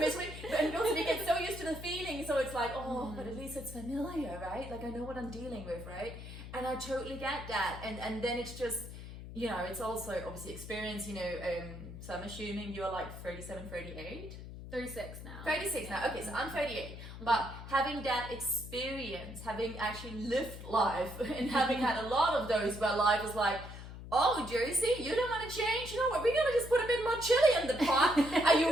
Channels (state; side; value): noise; left; hum, 11 dB below the sound